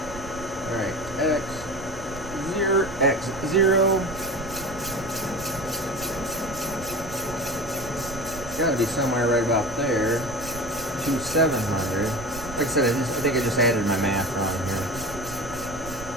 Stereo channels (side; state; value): right; noise; rumble, 14 dB below the sound